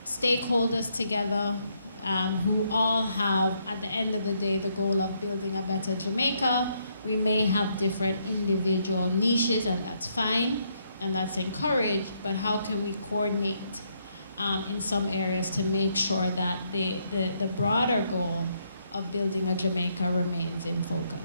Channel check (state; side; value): inverted; both; correlation -0.74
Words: stakeholders together, who all have, at the end of the day, the goal of building a better Jamaica. We may have different individual niches, and that's fine, and that's encouraged, but how can we coordinate in some areas to make sure that the broader goal of building a Jamaica remains in